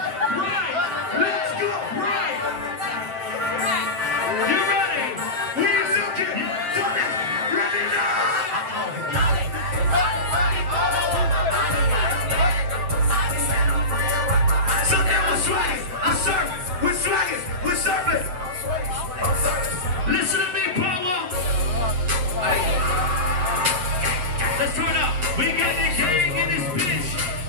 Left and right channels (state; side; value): late; left; 8.3 ms